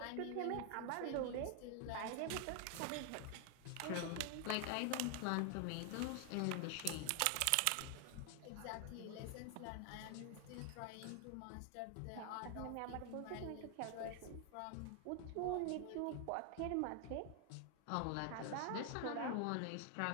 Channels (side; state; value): both; different; correlation 0.00